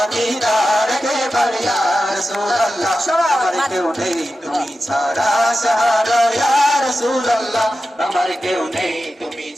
দিদার কেবার ইয়া রাসূলুল্লাহ আমার কেউ নেই তুমি ছাড়া সাহারা ইয়া রাসূলুল্লাহ আমার কেউ নেই তুমি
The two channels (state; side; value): normal; both; correlation 0.93